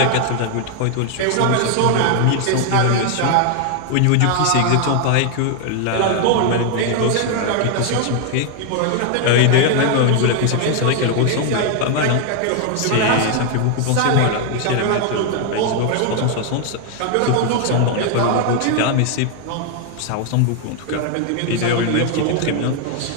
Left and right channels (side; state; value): both; different; correlation 0.00